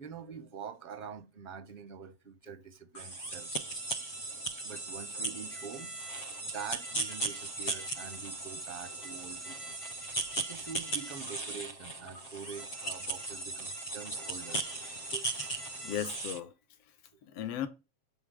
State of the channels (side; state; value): right; late; 7.5 ms